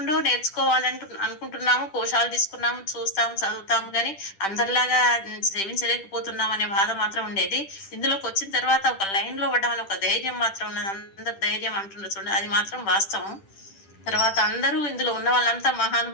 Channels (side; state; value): right; late; 10 ms